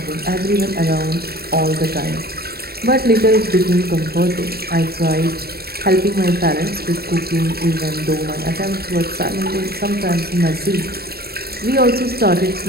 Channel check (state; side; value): late; left; 0.46 ms